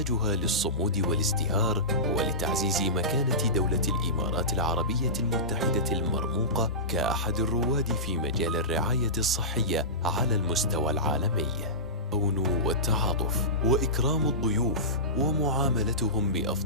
للصمود والازدهار ولتعزيز مكانة دولة الإمارات العربية المتحدة المرموقة كأحد الرواد في مجال الرعاية الصحية على المستوى العالمي. التعاون والتعاطف وإكرام الضيوف ومعاملتهم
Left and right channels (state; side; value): normal; both; correlation -0.20